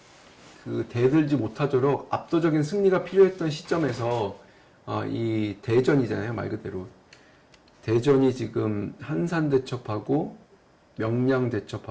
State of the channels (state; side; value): identical; both; correlation 1.00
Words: 그 대들지 못하도록 압도적인 승리가 필요했던 시점에서 이 대전이잖아요. 말 그대로 대전이 지금 한산대첩하고